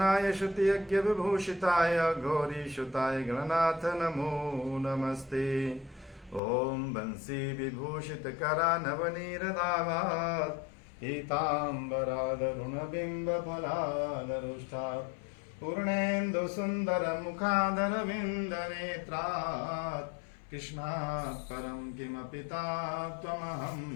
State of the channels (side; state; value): right; drops out; at 6.4 s